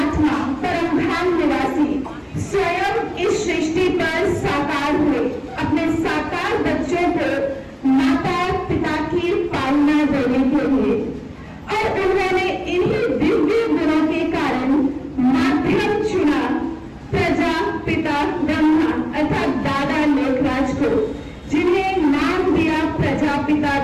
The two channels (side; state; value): both; identical; correlation 1.00